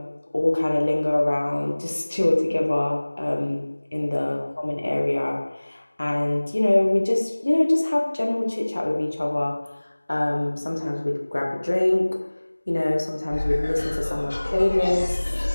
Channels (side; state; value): both; inverted; correlation -1.00